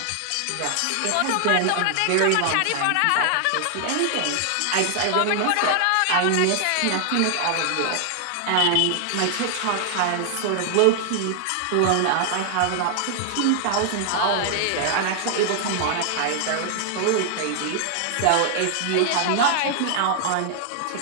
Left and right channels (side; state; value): both; different; correlation 0.00